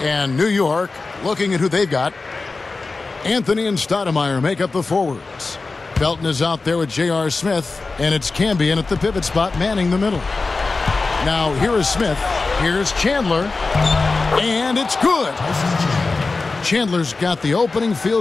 New York, looking at who they've got, Anthony and Stoudemire make up the forwards. Felton is out there with J.R. Smith, and it's Cambion at the pivot spot manning the middle. Now here is Smith, here's Chandler, and it's good. Chandler's got the opening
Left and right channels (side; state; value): right; quieter; 3.8 dB